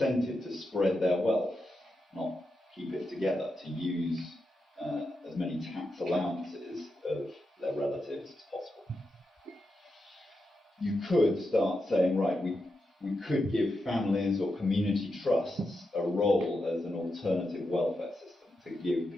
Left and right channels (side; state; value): both; normal; correlation 0.87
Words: to spread their wealth, not keep it together, to use as many tax allowances of their relatives as possible. You could start saying, right, we could give families or community trusts a role as an alternative welfare system to give